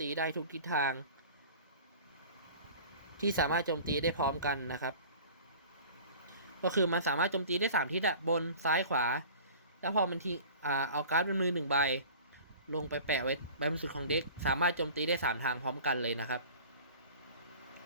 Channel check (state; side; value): inverted; both; correlation -0.42